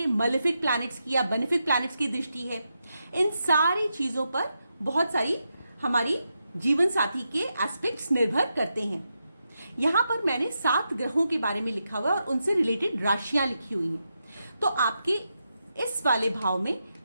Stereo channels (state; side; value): inverted; both; correlation -0.86